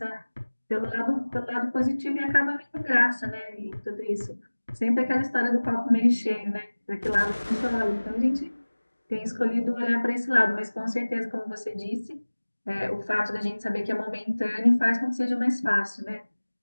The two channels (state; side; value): inverted; both; correlation -1.00